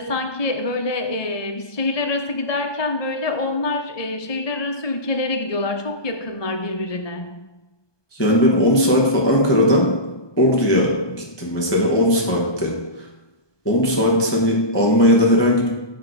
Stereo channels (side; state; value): right; late; 1.2 ms